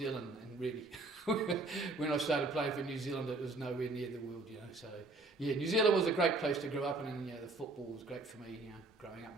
and really, when I started playing for New Zealand, it was nowhere near the world, So, New Zealand was a great place to grow up in, and, the football was great for me, growing up.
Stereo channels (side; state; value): left; quieter; 3.2 dB